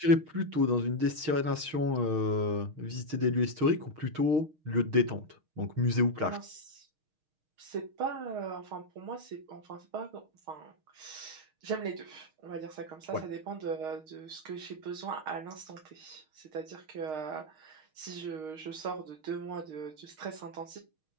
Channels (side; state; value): left; late; 6.4 ms